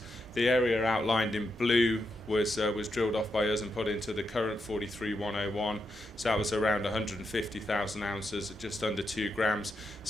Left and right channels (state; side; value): normal; both; correlation 0.84